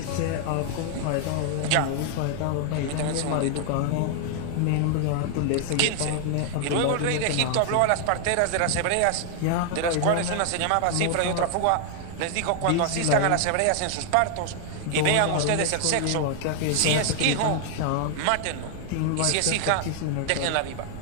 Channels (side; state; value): both; different; correlation 0.00